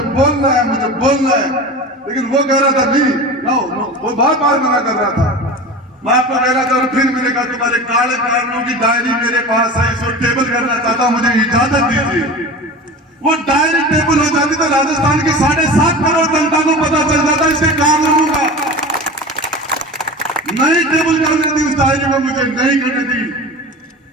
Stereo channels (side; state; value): both; normal; correlation 0.33